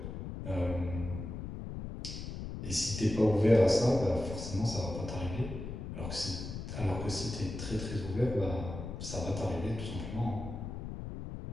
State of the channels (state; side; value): noise; left; rumble, 7 dB below the sound